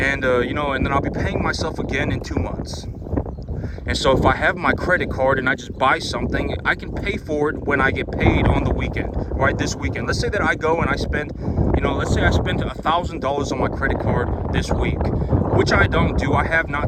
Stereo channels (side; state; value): both; identical; correlation 1.00